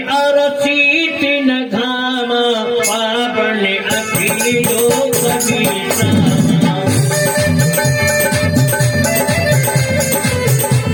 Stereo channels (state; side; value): identical; both; correlation 1.00